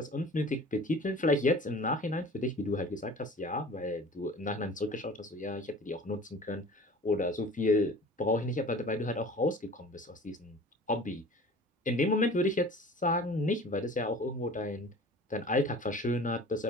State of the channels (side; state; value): both; normal; correlation 0.43